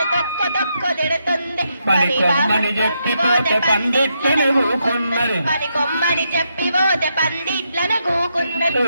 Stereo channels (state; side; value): inverted; both; correlation -0.81